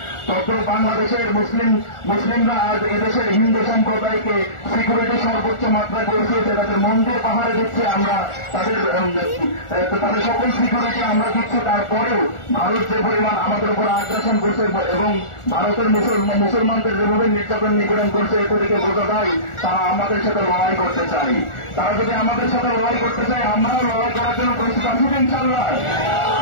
তখন বাংলাদেশের মুসলিমরা আজ এদেশের হিন্দু সম্প্রদায়কে সিকিউরিটি সর্বোচ্চ মাত্রায় পৌঁছিয়েছে। তাদের মন্দির পাহাড়ে দিচ্ছে আমরা, তাদের সকল সিকিউরিটি আমরা দিচ্ছি। তারপরেও ভারত যে পরিমাণ আমাদের উপর আগ্রাসন করছে এবং ভারতের মুসলমানদের যেভাবে নির্যাতন নিপীড়ন করছে, এ থেকে বোঝা যায় তারা আমাদের সাথে লড়াই করতে চাই। তারা যদি আমাদের সাথে লড়াই করতে চায়, আমরাও লড়াই করার জন্য প্রস্তুত আছি ইনশাআল্লাহ।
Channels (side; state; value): right; late; 1.4 ms